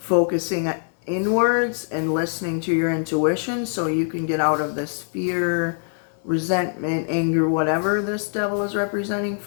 inwards and listening to your intuition so you can get out of this fear, resentment, anger, whatever this devil is representing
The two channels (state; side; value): silent; right; digital silence